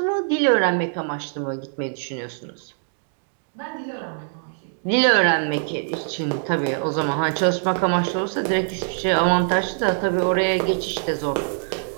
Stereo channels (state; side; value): silent; left; digital silence